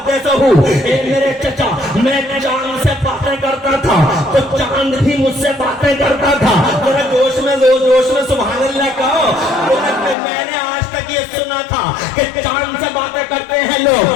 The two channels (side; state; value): right; drops out; at 10.2 s